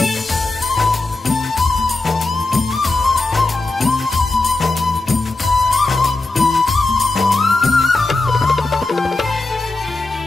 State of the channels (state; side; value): quieter; right; 3.2 dB